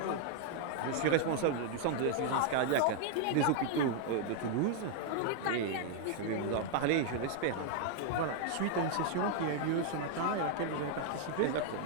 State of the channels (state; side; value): different; both; correlation 0.00